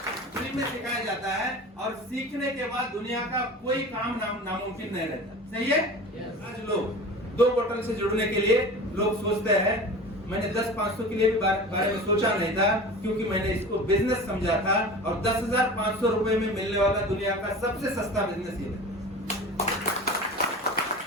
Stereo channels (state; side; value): normal; both; correlation 0.35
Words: फ्री में सिखाया जाता है, और सीखने के बाद दुनिया का कोई काम नामुमकिन नहीं रहता। सही है? आज लोग 2 बोतल से जुड़ने के लिए लोग सोचते हैं मैंने 10-500 के लिए भी बारे में सोचा नहीं था, क्योंकि मैंने इसको बिजनेस समझा था और 10,500 रुपए में मिलने वाला दुनिया का सबसे सस्ता बिजनेस ये है।